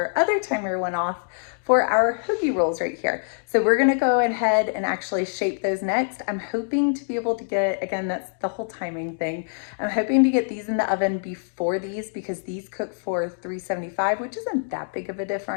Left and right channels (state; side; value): silent; right; digital silence